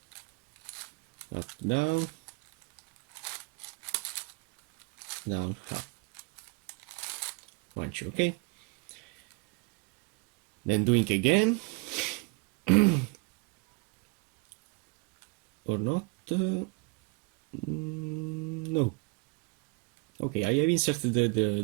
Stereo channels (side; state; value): left; quieter; 29.1 dB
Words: up, down, up, 1, 2, okay. Then doing again, or not, no. Okay, I have inserted